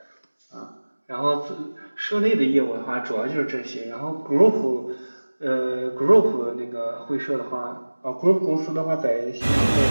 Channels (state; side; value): inverted; both; correlation -1.00